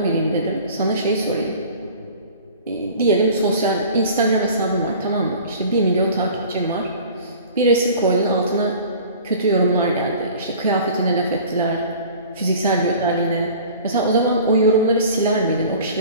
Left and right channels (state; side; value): inverted; both; correlation -0.44